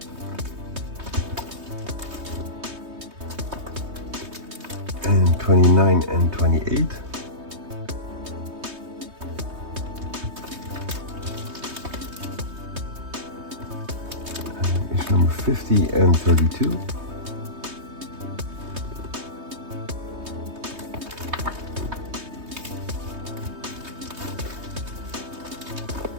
And 29 and 28. Number 50 and 32.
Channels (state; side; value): late; left; 3.2 ms